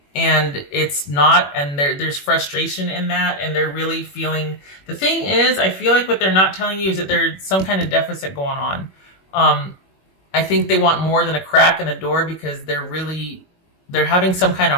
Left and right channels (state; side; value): late; right; 21 ms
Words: And it's not, and there's frustration in that, and they're really feeling, the thing is, I feel like what they're not telling you is that there's some kind of deficit going on. I think they want more than a crack in the door because they're having some kind of